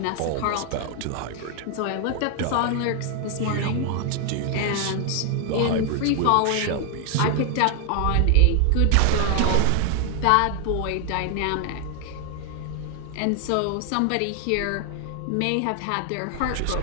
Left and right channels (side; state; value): both; different; correlation 0.00